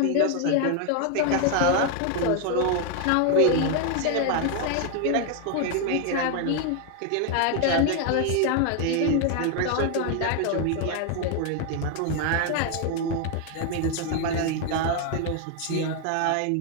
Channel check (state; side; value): different; both; correlation 0.01